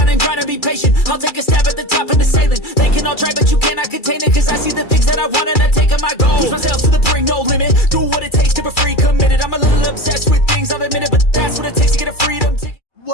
and grind and be patient. I'll take a stab at the top and the sailing. They can all try, but you cannot contain it. Cause I see the things that I want and I take on my goal. Push myself to the brink, no limit. Do what it takes to be free, committed. I'm a little obsessed with things, I'll admit it. But that's what it takes to get a freedom ticket.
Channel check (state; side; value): late; right; 2.3 ms